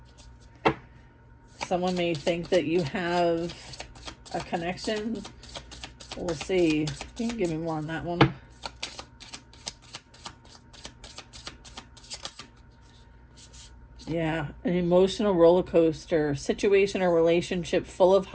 Someone may think that you have a connection. We'll see. You can give me more on that one. Yeah, an emotional roller coaster, situation or relationship full of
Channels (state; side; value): identical; both; correlation 1.00